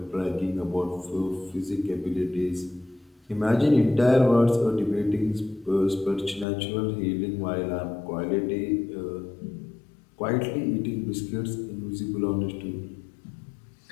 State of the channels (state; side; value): drops out; right; at 6.5 s